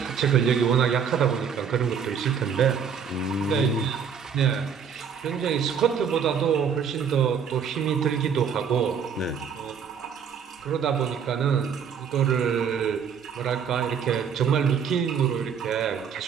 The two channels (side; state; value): left; quieter; 7.1 dB